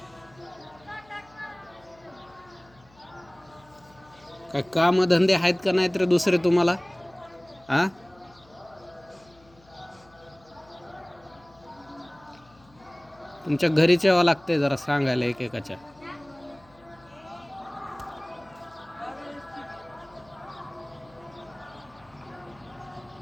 काय काम धंदे आहेत का नाहीत रे दुसरे तुम्हाला? आ तुमच्या घरीच यावं लागतंय जरा सांगायला एकेकाच्या.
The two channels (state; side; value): noise; left; hum, 28 dB below the sound